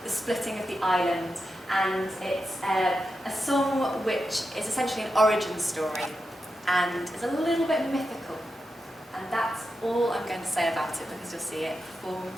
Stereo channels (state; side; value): normal; both; correlation 0.88